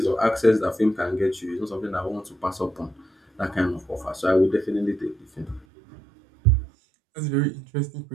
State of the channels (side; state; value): left; drops out; at 5.7 s